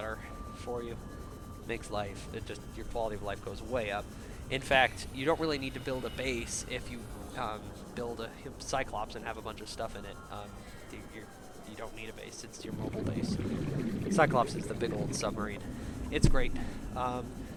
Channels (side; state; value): both; identical; correlation 1.00